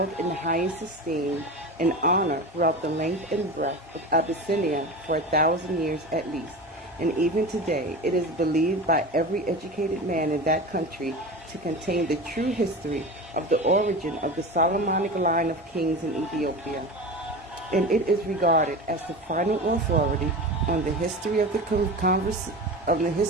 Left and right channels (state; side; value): normal; both; correlation 0.29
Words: in the highest esteem and honor throughout the length and breadth of Abyssinia for 1,000 years at least, and even today it is believed by every educated man in that country to contain the true history of the origin of the Solomonic line of kings in Ethiopia, and it is regarded as the final authority on the history of the